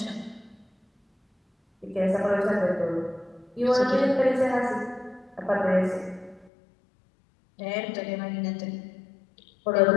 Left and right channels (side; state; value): right; drops out; at 6.5 s